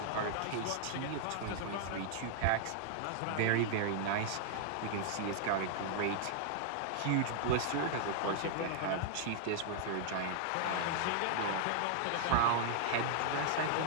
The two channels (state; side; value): different; both; correlation -0.01